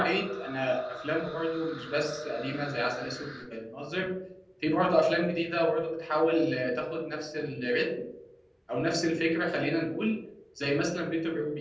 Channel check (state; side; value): identical; both; correlation 1.00